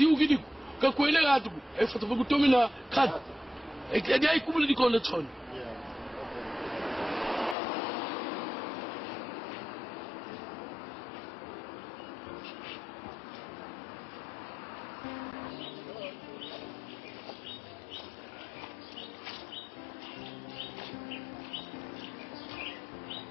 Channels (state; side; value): drops out; right; at 7.6 s